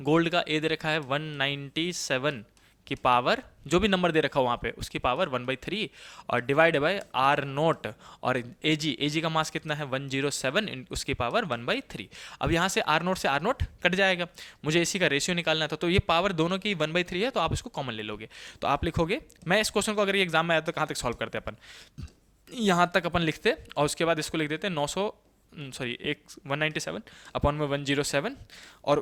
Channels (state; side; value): identical; both; correlation 1.00